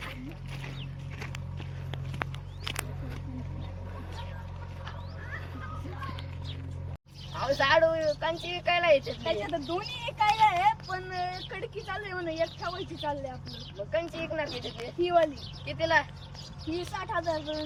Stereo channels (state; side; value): identical; both; correlation 1.00